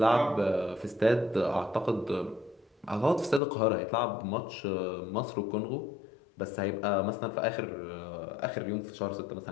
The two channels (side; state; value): right; drops out; at 3.4 s